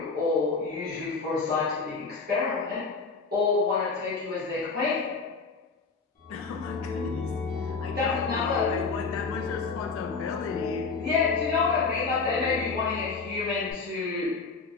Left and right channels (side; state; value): right; quieter; 4.5 dB